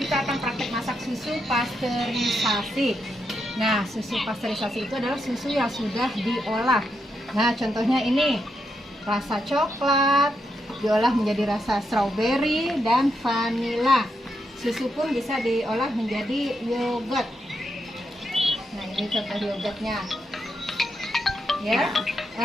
akan praktek masak susu pasteurisasi. Nah, susu pasteurisasi itu adalah susu yang sudah diolah. Nah, contohnya ini rasa coklat diolah menjadi rasa strawberry dan vanila. Susu pun bisa diolah menjadi yogurt. Nah, ini contoh yogurtnya. Ya.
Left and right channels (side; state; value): both; normal; correlation 0.82